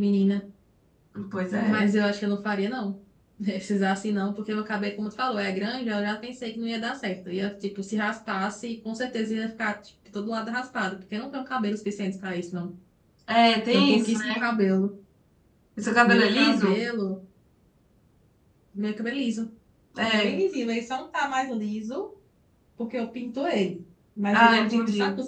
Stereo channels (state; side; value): identical; both; correlation 1.00